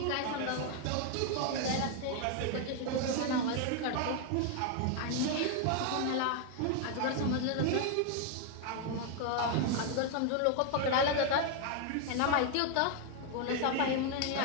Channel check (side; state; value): both; different; correlation 0.01